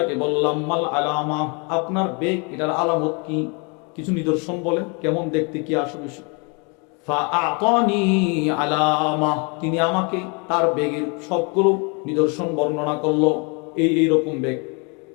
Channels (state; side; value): quieter; right; 33.5 dB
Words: বললাম, মাল আলামা, আপনার বেগ এটার আলামত কি, কিছু নিদর্শন বলেন, কেমন দেখতে, কি আসবে। ফাআতানি আলামা, তিনি আমাকে তার বেগের সবগুলো নিদর্শন বর্ণনা করলো। এইরকম বেগ।